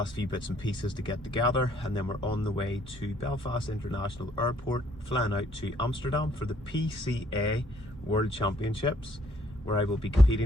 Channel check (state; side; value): normal; both; correlation 0.65